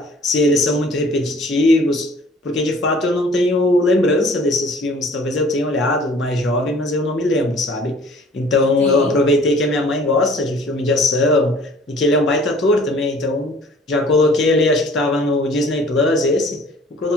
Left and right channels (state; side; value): normal; both; correlation 0.52